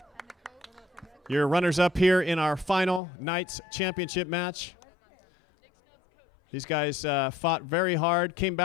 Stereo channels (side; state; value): right; drops out; at 3.0 s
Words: Your runners-up here in our final NYTS championship match. These guys fought very hard, came